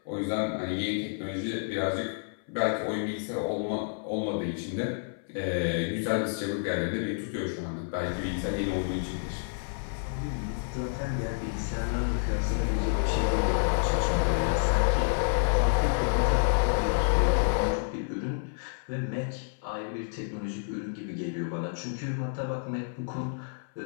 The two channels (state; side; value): silent; right; 58 dB below the other